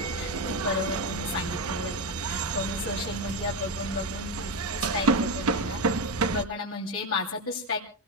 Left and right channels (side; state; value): both; normal; correlation 0.12